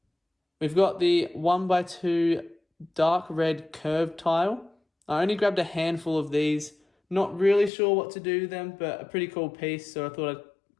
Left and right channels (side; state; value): right; drops out; at 7.7 s